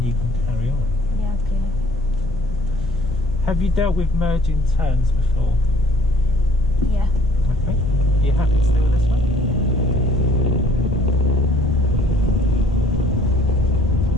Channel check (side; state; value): both; normal; correlation 0.56